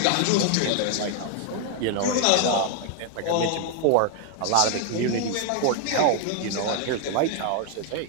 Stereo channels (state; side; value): different; both; correlation 0.00